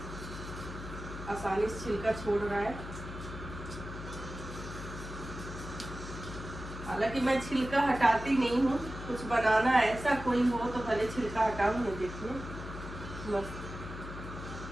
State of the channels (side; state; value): left; noise; hum, 10 dB below the sound